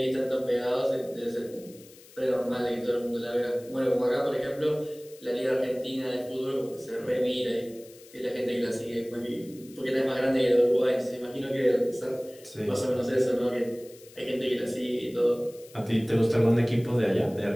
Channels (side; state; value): left; noise; hiss, 23 dB below the sound